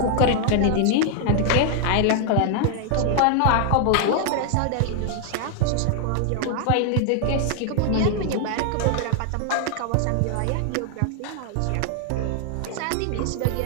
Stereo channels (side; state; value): both; different; correlation 0.00